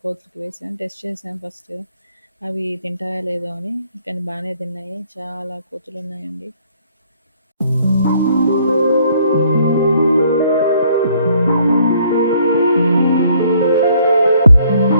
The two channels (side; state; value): both; inverted; correlation -0.63